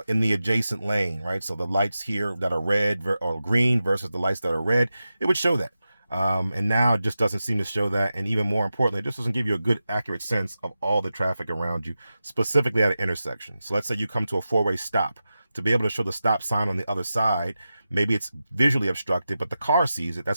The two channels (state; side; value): inverted; both; correlation -0.92